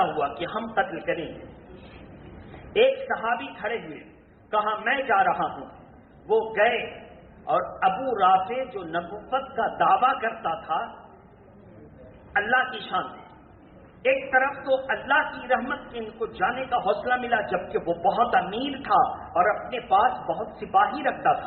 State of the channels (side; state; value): both; identical; correlation 1.00